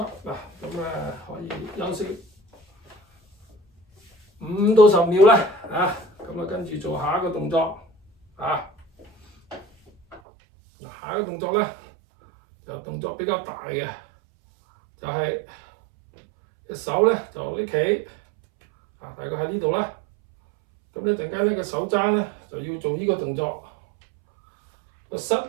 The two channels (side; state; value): left; drops out; at 10.2 s